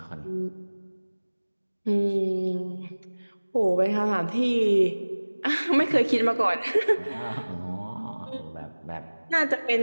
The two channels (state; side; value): inverted; both; correlation -1.00